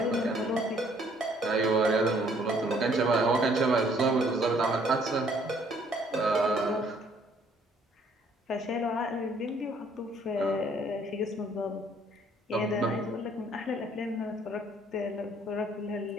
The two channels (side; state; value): both; normal; correlation 0.62